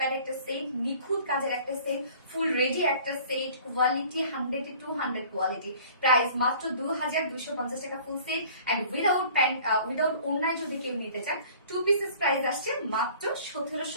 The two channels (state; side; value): inverted; both; correlation -0.49